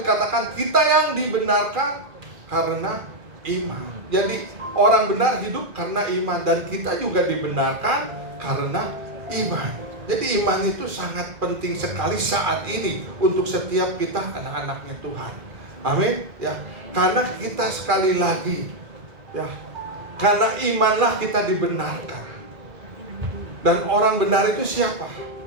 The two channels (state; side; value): late; left; 2.4 ms